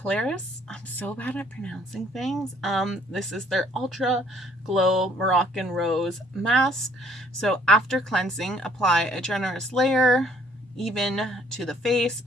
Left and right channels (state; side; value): normal; both; correlation 0.61